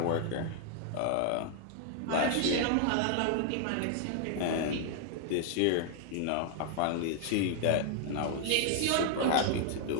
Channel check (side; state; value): both; different; correlation 0.00